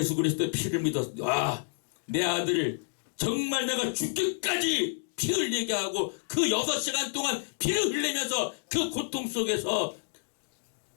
그리스도의 피를 믿었어. 와, 내 아들을 정말 내가 죽기까지 피 흘리게 하고 그 6시간 동안 피를 흘리면서 그 고통 속에서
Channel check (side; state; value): right; silent; digital silence